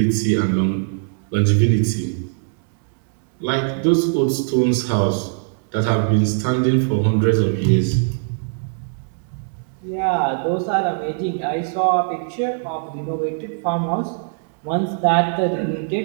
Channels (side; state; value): left; silent; digital silence